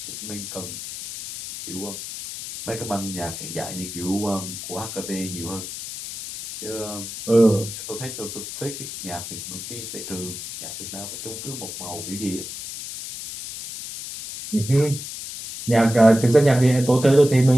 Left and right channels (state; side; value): noise; left; hiss, 9 dB below the sound